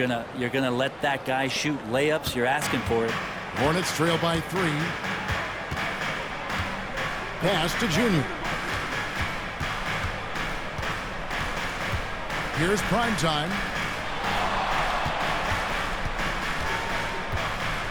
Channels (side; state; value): both; identical; correlation 1.00